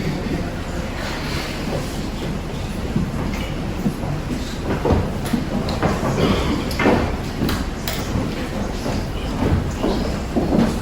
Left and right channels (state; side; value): identical; both; correlation 1.00